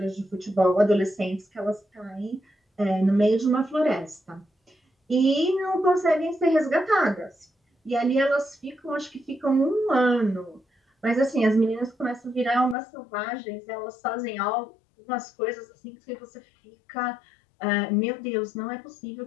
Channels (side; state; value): right; drops out; at 12.8 s